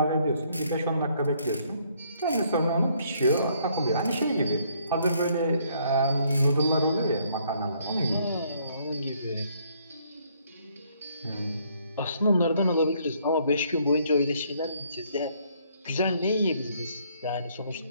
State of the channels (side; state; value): both; inverted; correlation -0.67